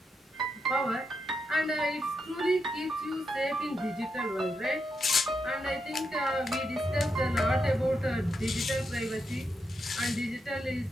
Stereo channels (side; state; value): both; normal; correlation 0.83